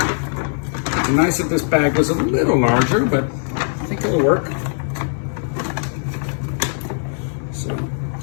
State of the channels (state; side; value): silent; right; digital silence